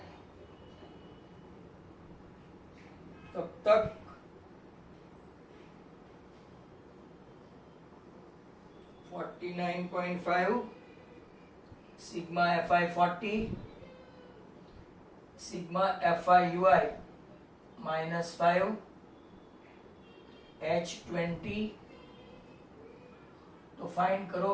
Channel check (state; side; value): identical; both; correlation 1.00